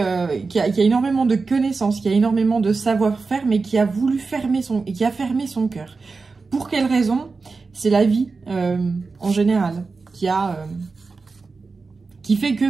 qui a énormément de connaissances, qui a énormément de savoir-faire, mais qui a voulu fermer son cœur. Pour quelle raison? C'est la vie en général qui fait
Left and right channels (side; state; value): left; quieter; 4.3 dB